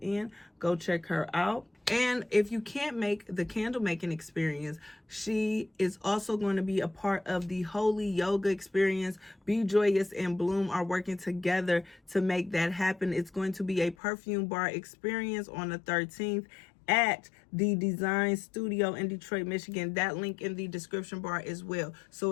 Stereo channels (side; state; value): right; drops out; at 14.0 s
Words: in, go check her out. And if you can't make the candle making experience, she is also going to be a part of the Holy Yoga experience. Be Joyous and Bloom are working together to make that happen. It's going to be a perfume bar experience on the 13th at the Design Studio in Detroit, Michigan. That link in the description bar as well. So